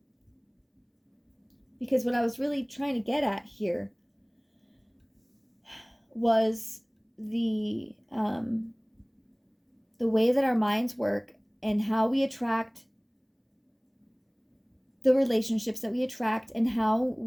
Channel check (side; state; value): both; identical; correlation 1.00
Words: because what I was really trying to get at here was the way that our minds work and how we attract the relationships that we attract, and how